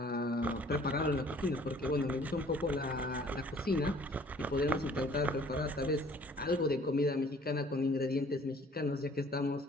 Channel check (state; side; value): normal; both; correlation 0.55